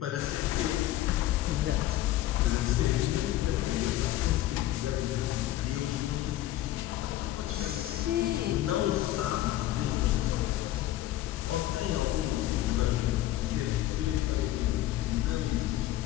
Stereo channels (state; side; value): quieter; right; 14.4 dB